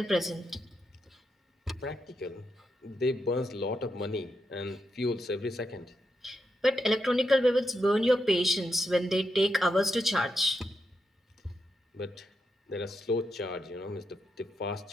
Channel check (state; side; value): normal; both; correlation 0.83